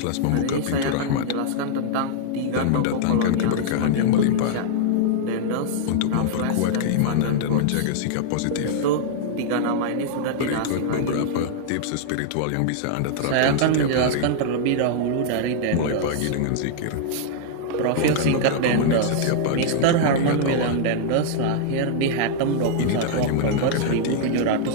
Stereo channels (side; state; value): both; different; correlation -0.01